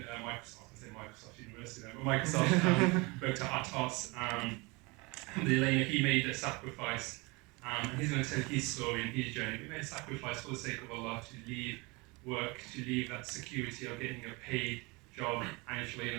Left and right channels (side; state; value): left; quieter; 26.3 dB